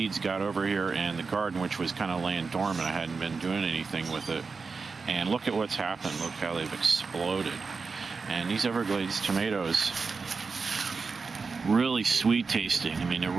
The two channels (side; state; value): left; quieter; 4.7 dB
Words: got over here in the garden, which was kind of laying dormant. I hadn't been doing anything with it. And look at what's happened. Look how they've exploded. And these Everglades tomatoes, really sweet tasting. I mean, they're